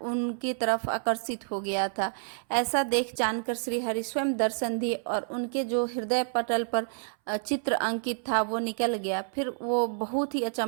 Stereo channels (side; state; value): left; silent; 59 dB below the other